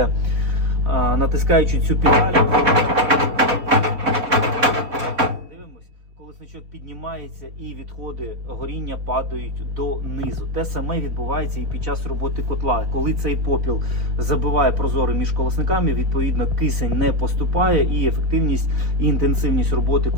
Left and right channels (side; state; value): left; late; 3.8 ms